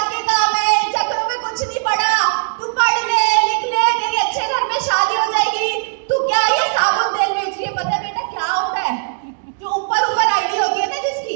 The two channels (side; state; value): left; silent; digital silence